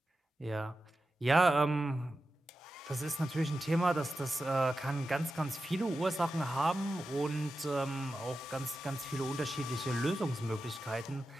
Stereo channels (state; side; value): normal; both; correlation 0.92